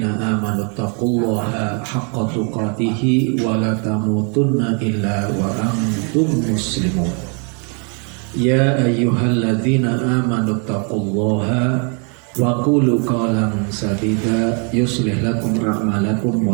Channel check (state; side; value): quieter; left; 37.7 dB